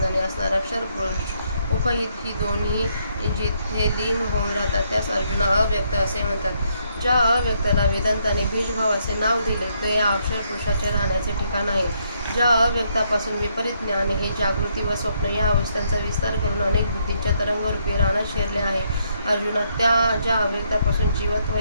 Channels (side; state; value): both; inverted; correlation -0.74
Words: असणारा क्षर पुरुष उपहित ही दोन्ही जिथे लीन होऊन राहतात त्यास अर्जुना अव्यक्त असे म्हणतात. ज्या अव्यक्ताला वेदांताने बीजभाव असे नाव दिले ते या अक्षर पुरुषाचे राहण्याचे ठिकाण आहे. ज्या अव्यक्तापासून विपरीत ज्ञान हे जागृती व स्वप्न या अवस्थांचा विस्तार करून अनेक बुद्धींच्या तरंगरूपी रानात शिरले आहे. अर्जुना, त्या ज्या अव्यक्तापासून जीवत्व